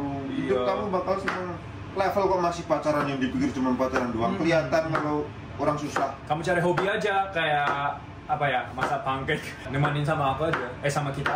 Iya. Hidup kamu bakal seneng. Level kok masih pacaran yang dipikir cuma pacaran doang, kelihatan kalau orang susah. Kamu cari hobi aja, kayak apa ya, masak pancake, nemanin sama aku aja, sama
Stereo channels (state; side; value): identical; both; correlation 1.00